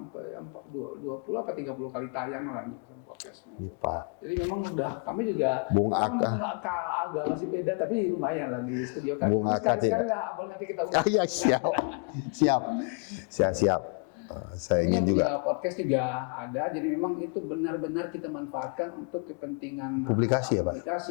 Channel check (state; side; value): quieter; right; 38.2 dB